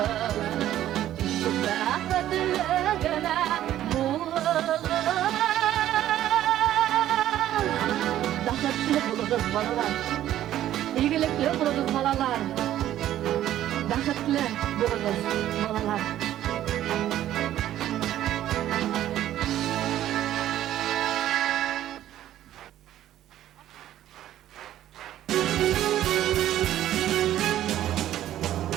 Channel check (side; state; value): left; quieter; 12.5 dB